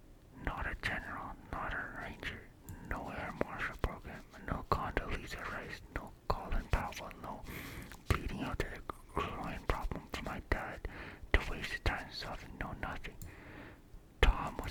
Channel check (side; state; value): both; identical; correlation 1.00